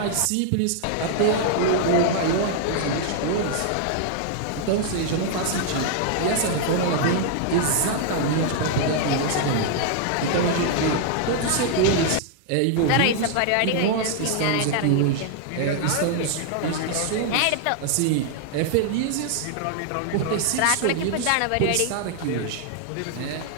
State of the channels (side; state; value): both; different; correlation 0.00